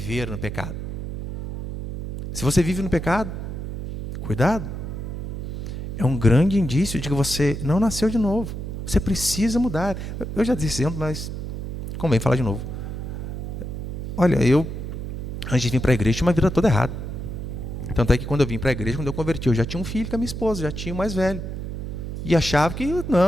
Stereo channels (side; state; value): right; noise; hum, 6 dB below the sound